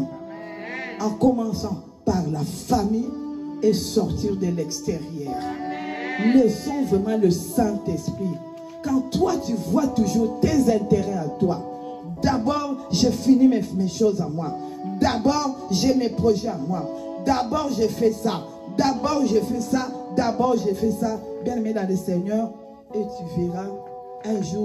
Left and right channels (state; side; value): identical; both; correlation 1.00